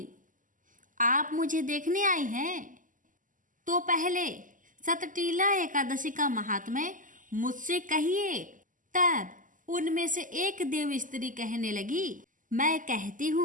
आप मुझे देखने आई हैं? तो पहले सतटीला एकादशी का महात्म्य मुझसे कहिए। तब उनमें से एक देव स्त्री कहने लगी, मैं कहती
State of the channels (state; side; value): late; left; 0.38 ms